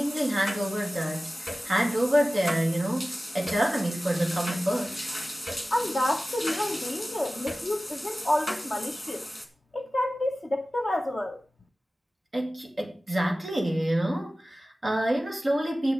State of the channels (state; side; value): normal; both; correlation 0.96